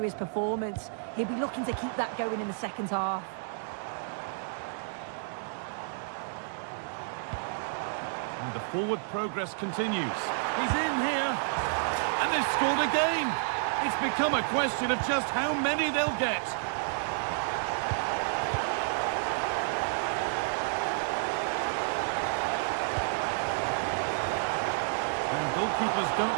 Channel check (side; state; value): left; silent; 57 dB below the other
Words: his performance. He'll be looking to keep that going in the second half. And the forward progress continues. He's in here. And they've scored again. It's become a question of just how many they'll get. Goalkeepers